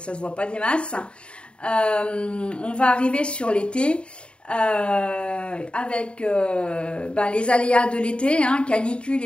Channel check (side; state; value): right; late; 0.055 ms